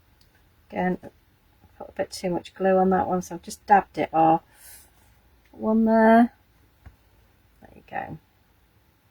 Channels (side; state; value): both; identical; correlation 1.00